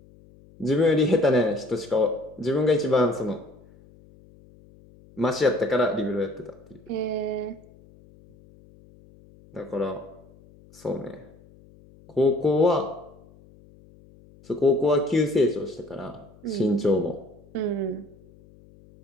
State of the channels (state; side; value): noise; left; hum, 25 dB below the sound